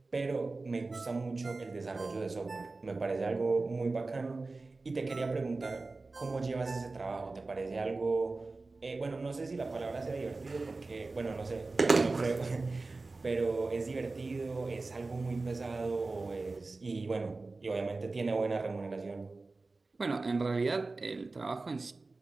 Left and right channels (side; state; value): left; quieter; 3.6 dB